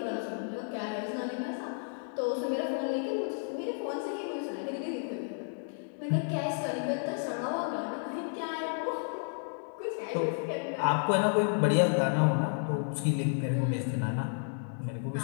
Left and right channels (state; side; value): silent; right; digital silence